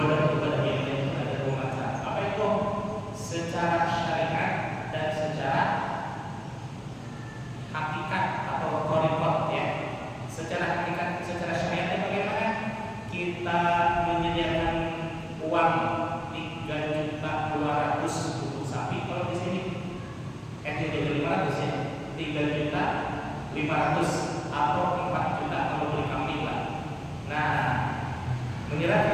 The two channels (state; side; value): identical; both; correlation 1.00